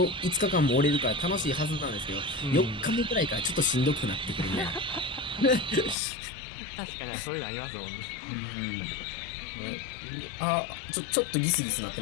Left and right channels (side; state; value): right; drops out; at 6.0 s